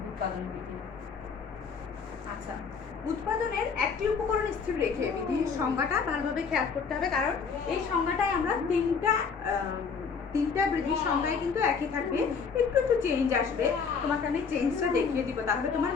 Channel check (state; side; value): quieter; right; 5.7 dB